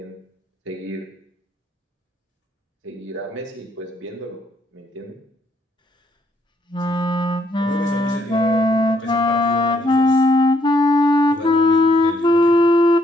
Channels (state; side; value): normal; both; correlation 0.70